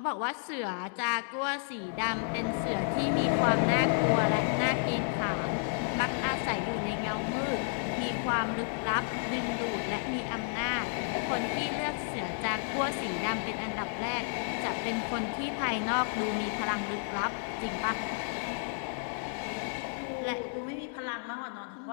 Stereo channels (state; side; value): silent; right; digital silence